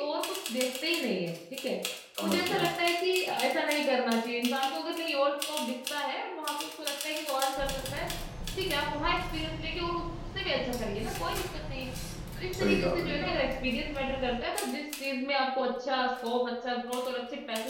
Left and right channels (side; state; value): both; identical; correlation 1.00